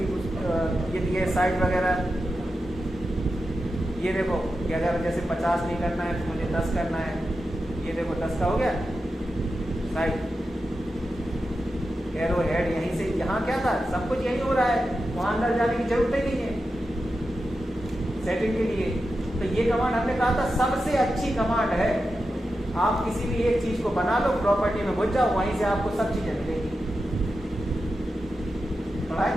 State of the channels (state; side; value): normal; both; correlation 0.90